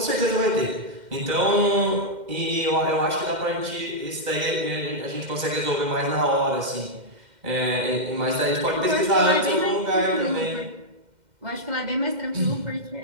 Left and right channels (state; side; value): late; left; 2.1 ms